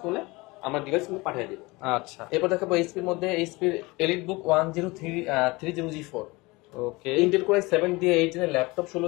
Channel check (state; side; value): quieter; right; 23.4 dB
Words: করলে আমরা ডিভাইস কিন্তু পাঠিয়ে দিব। আচ্ছা, এরপর দেখাবো এইচপির মধ্যে এইচপির এলিট বুক 1030 G4 ওকে ইন্টেল কোর i7 দিয়ে 8 জেনের ল্যাপটপ